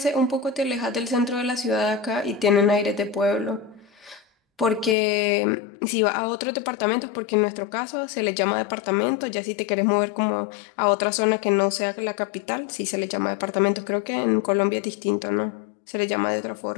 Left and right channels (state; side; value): drops out; right; at 5.0 s